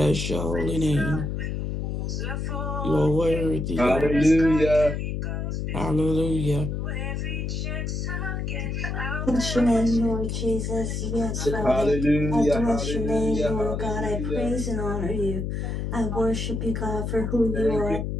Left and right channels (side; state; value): left; noise; hum, 3 dB below the sound